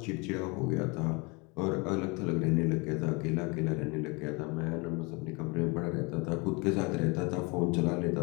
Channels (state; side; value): quieter; right; 28.7 dB